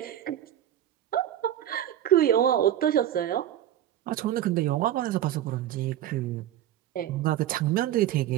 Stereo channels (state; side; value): quieter; left; 11.7 dB